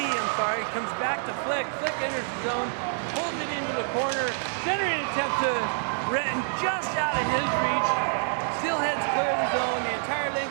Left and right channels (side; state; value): left; silent; digital silence